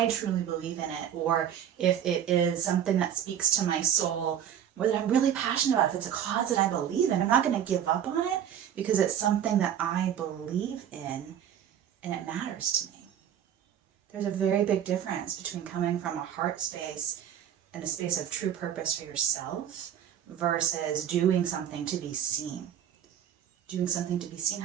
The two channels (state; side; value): quieter; left; 9.6 dB